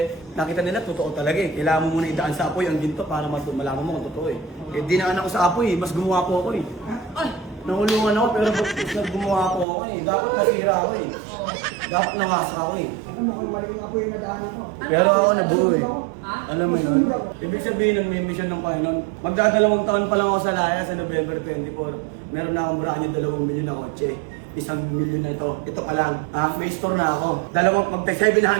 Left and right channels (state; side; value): drops out; left; at 9.7 s